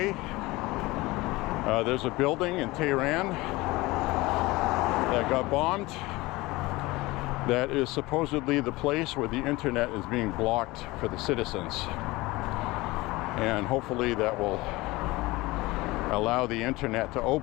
There's a building in Tehran that got bombed. That is supposedly the place where the internet is being blocked for the citizens. And hopefully that will allow the internet to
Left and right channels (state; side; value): quieter; right; 21.0 dB